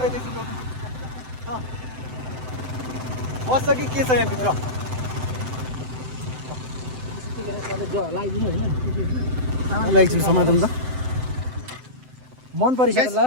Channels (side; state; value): left; late; 7.8 ms